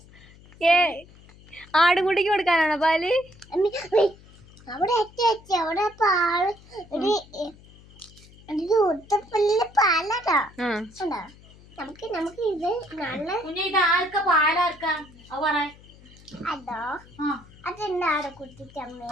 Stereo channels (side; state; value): left; noise; hum, 23 dB below the sound